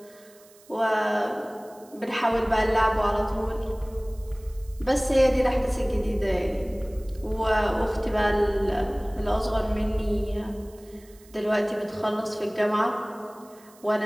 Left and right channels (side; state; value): right; noise; hiss, 26 dB below the sound